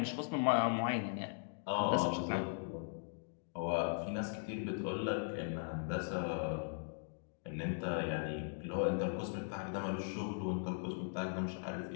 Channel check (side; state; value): right; silent; digital silence